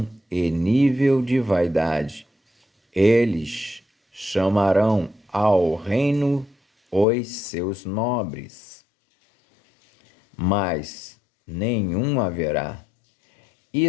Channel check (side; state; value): right; drops out; at 7.1 s